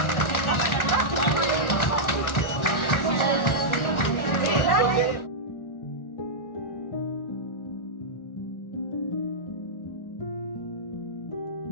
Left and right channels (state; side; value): late; right; 1.4 ms